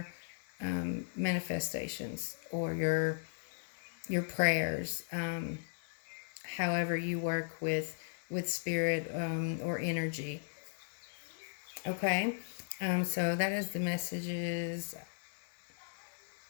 manifestations or your prayers. However you work with spirit or energy. Okay, so that is the messages.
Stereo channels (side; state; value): right; silent; 53 dB below the other